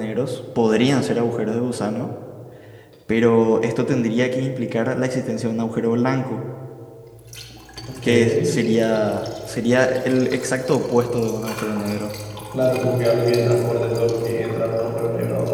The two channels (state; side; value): identical; both; correlation 1.00